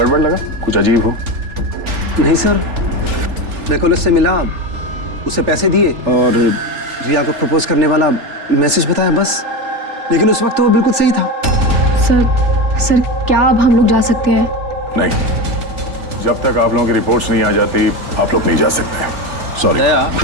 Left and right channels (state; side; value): late; left; 3.4 ms